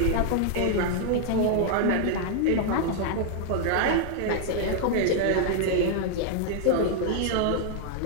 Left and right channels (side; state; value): both; different; correlation 0.00